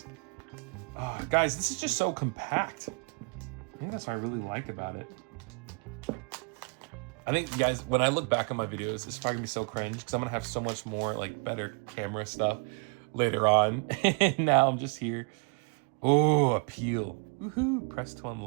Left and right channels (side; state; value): left; quieter; 34.7 dB